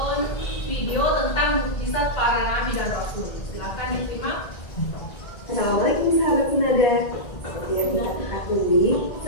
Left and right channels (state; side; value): late; right; 1.8 ms